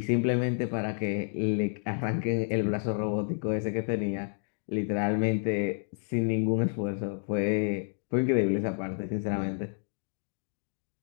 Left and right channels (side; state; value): right; silent; digital silence